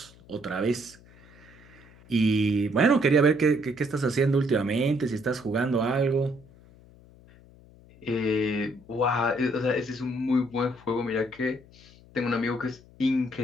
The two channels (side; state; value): left; noise; hum, 24 dB below the sound